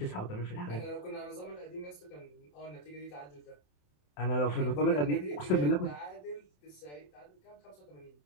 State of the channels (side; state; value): right; late; 27 ms